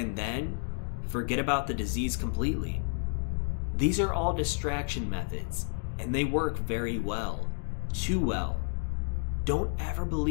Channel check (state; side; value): silent; right; 57 dB below the other